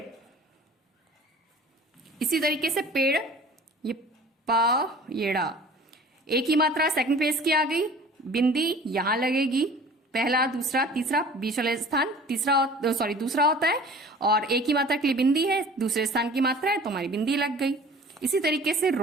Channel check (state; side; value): normal; both; correlation 0.45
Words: इसी तरीके से पेड़, ये पा ये ड़ा, एक ही मात्रा सेकंड प्लेस की आ गई, बिंदी यहां लगेगी, पहला दूसरा तीसरा बीच वाला स्थान तीसरा सॉरी दूसरा होता है और एक ही मात्रा के लिए बिंदी है, दूसरे स्थान की मात्रा है तो हमारी बिंदी लग गई। इसी तरीके से